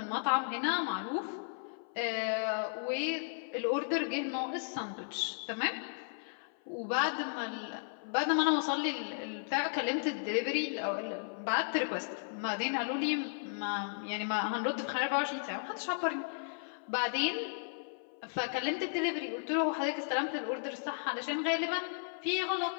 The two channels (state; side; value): silent; right; 55 dB below the other